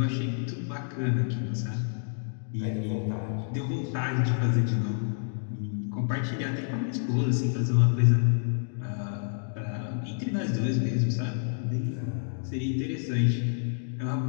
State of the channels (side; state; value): right; silent; digital silence